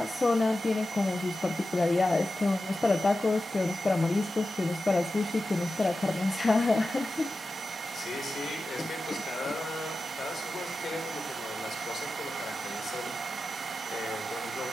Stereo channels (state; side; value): normal; both; correlation 0.93